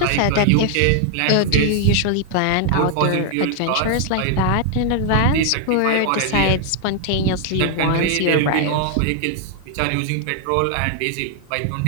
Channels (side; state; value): both; different; correlation 0.00